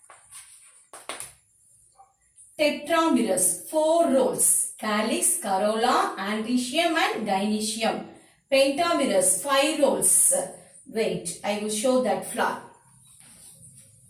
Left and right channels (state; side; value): identical; both; correlation 1.00